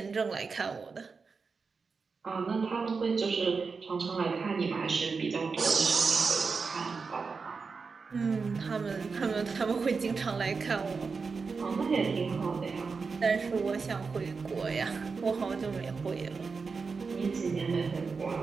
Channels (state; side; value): quieter; left; 4.8 dB